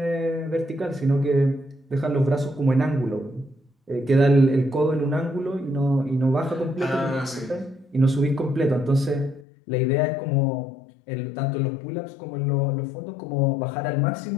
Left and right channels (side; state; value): right; drops out; at 9.5 s